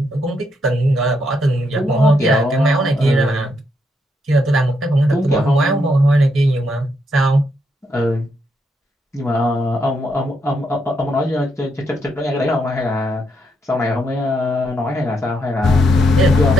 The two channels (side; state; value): both; normal; correlation 0.78